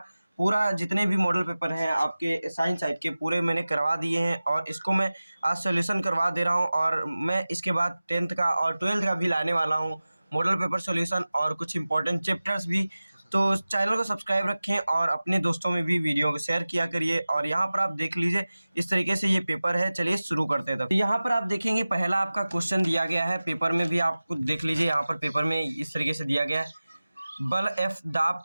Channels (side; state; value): both; inverted; correlation -0.97